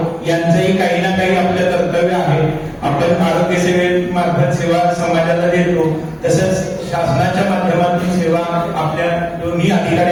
यांचंही काही ना काही आपलं कर्तव्य आहे. आपण आरोग्य सेवेमार्फत सेवा समाजाला देतो, तसंच शासनाच्या माध्यमातून सेवा आपल्या दोन्ही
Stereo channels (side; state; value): both; identical; correlation 1.00